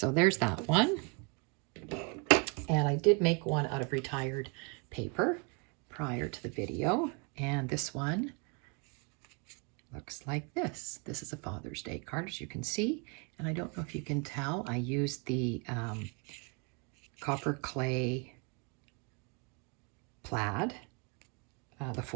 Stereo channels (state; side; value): quieter; left; 32.2 dB